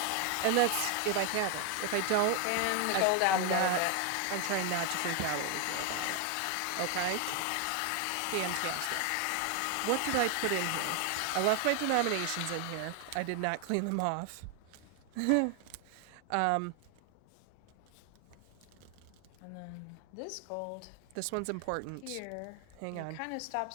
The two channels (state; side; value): different; both; correlation 0.01